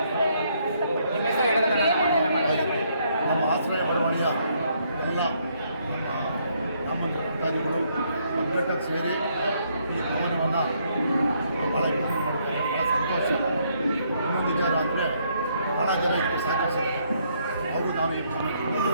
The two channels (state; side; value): inverted; both; correlation -0.71